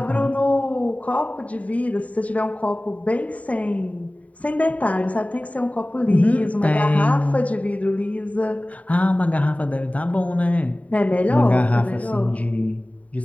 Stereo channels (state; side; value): late; right; 0.068 ms